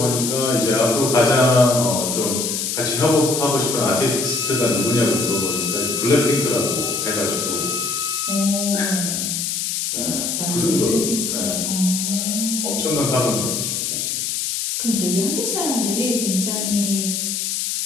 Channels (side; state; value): left; noise; hiss, 1 dB below the sound